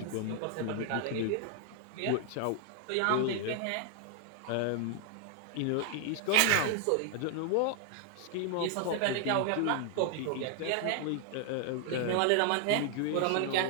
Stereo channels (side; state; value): both; different; correlation 0.00